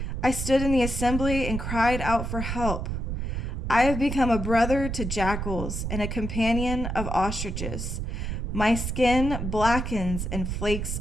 I stood in the assembly and cried out for help. I have become a brother to jackals and a companion of ostriches. My skin blackens and flakes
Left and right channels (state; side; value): noise; right; rumble, 3 dB below the sound